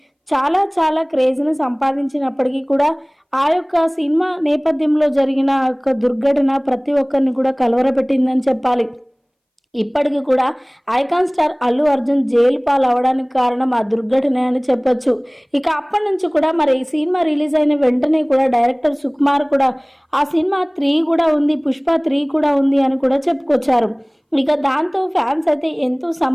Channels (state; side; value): identical; both; correlation 1.00